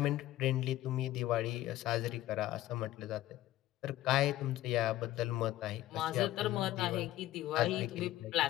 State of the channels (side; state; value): right; quieter; 15.1 dB